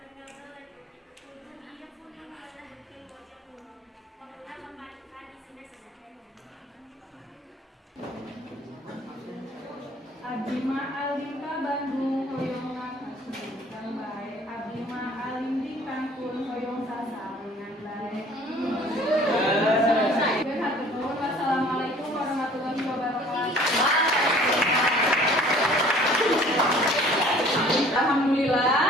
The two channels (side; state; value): both; normal; correlation 0.52